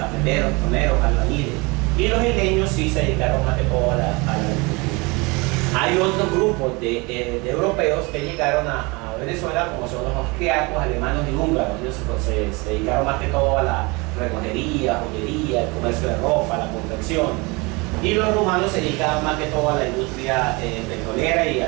toneros, albañiles. Y los isleños sí se dedicaron más que todo a la agricultura. Hay otros grupos de europeos que llegaron a Venezuela, como son los austriacos, alemanes y húngaros. Ellos se dedicaron más que todo a la relojería, joyería, el comercio de ropa, la confección. Y los rumanos se dedicaban más que todo a la industria petrolera y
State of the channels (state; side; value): quieter; left; 26.4 dB